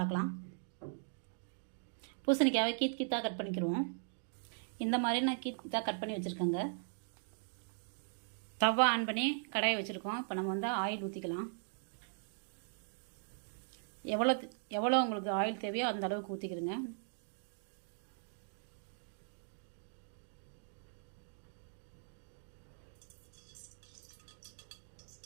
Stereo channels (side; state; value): left; silent; digital silence